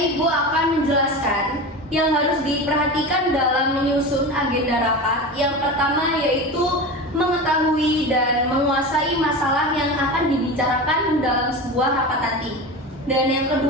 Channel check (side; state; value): both; normal; correlation 0.27